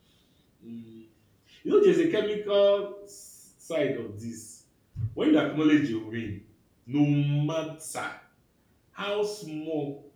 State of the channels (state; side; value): identical; both; correlation 1.00